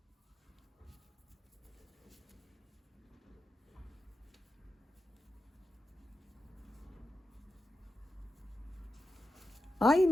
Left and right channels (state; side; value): normal; both; correlation 0.90